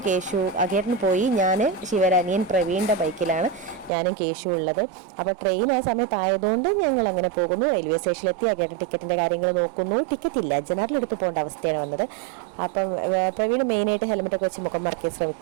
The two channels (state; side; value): drops out; left; at 3.9 s